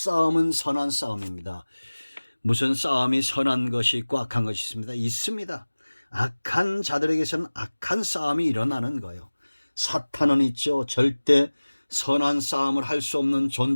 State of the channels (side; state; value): both; inverted; correlation -1.00